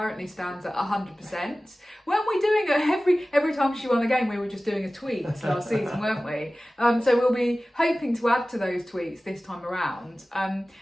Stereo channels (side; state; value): both; normal; correlation 0.97